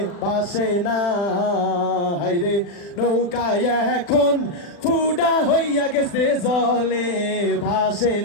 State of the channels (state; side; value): late; right; 39 ms